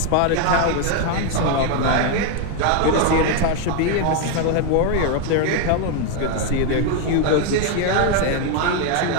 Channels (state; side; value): different; both; correlation 0.01